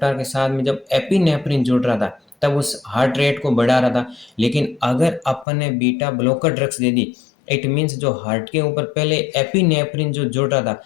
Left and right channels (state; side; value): drops out; right; at 5.5 s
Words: के साथ में जब एपिनेफ्रिन जुड़ रहा था तब उस हार्ट रेट को बढ़ा रहा था। लेकिन अगर अपन ने beta blocker drugs they the, it means जो हार्ट के ऊपर पहले एपिनेफ्रिन जो जुड़ रहा था